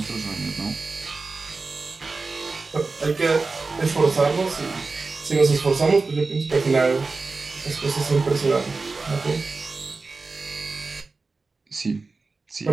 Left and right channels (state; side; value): quieter; left; 3.9 dB